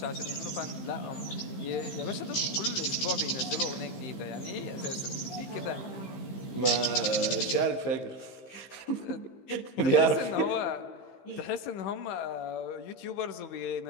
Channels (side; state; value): right; late; 15 ms